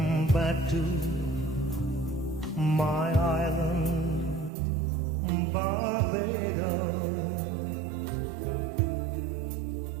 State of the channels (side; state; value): left; drops out; at 4.5 s